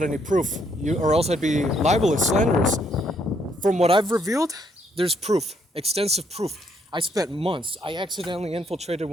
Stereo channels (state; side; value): normal; both; correlation 0.71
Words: any proof, or else I'd be libelous, slanderous. From what I've revealed, there's proof, extensive proof. I spent months. I accidentally infiltrated